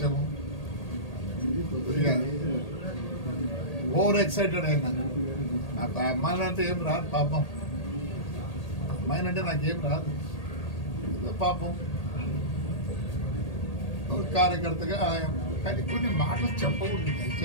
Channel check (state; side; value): late; right; 1.8 ms